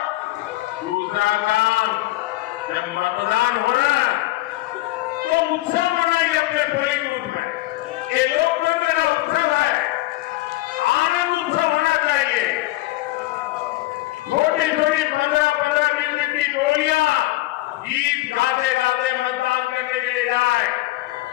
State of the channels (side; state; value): right; quieter; 18.6 dB